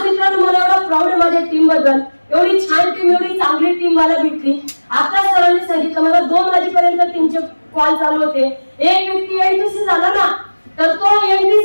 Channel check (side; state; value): both; inverted; correlation -1.00